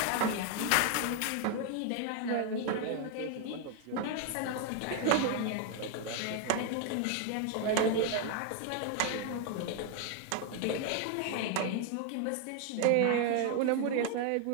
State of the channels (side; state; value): both; different; correlation 0.00